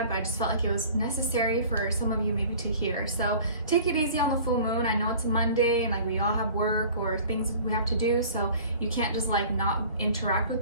but I just felt like it was necessary for some of you maybe to hear. So take it easy on the full moon. I know it's Monday and like we all have work or things we have to do, so you can't just like not interact with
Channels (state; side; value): inverted; both; correlation -0.46